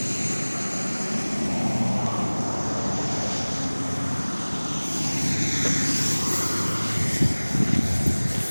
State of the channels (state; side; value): inverted; both; correlation -1.00